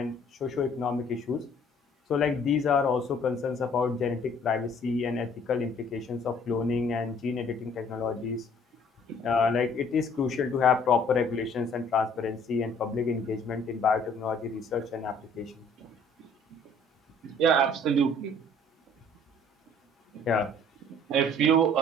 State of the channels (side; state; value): both; normal; correlation 0.57